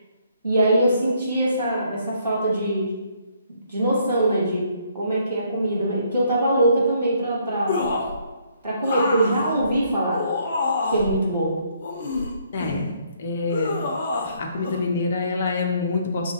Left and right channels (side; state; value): both; inverted; correlation -0.67